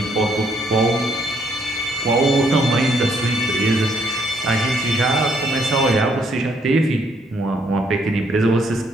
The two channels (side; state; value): both; normal; correlation 0.69